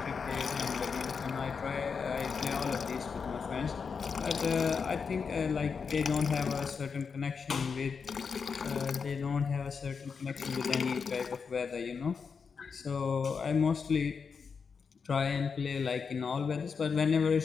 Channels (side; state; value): right; quieter; 5.7 dB